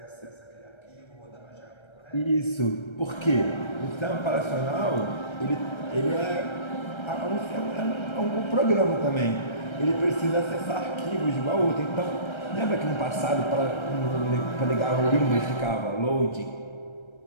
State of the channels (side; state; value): right; late; 1.3 ms